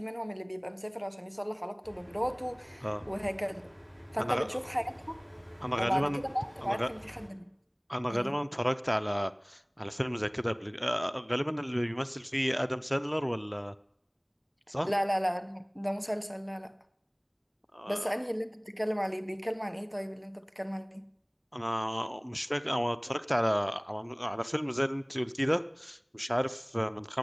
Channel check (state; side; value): identical; both; correlation 1.00